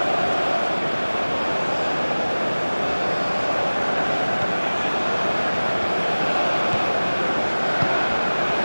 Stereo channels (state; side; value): inverted; both; correlation -1.00